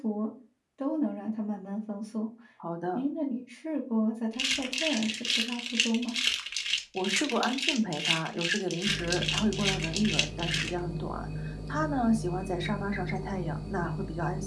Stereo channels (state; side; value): identical; both; correlation 1.00